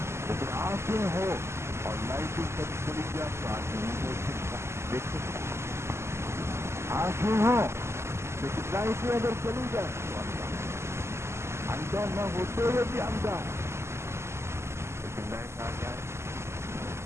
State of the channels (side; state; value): left; late; 0.13 ms